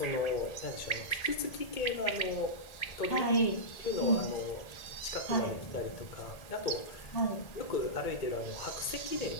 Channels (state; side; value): late; right; 1.8 ms